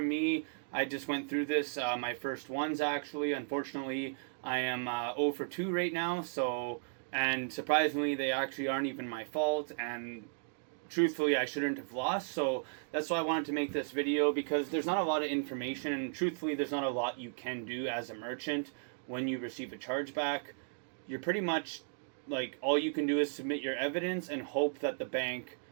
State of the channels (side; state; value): left; silent; digital silence